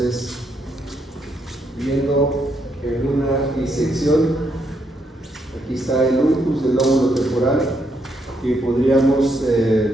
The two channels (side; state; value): both; normal; correlation 0.77